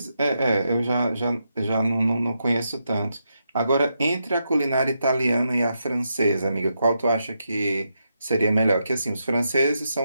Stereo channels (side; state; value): both; inverted; correlation -0.83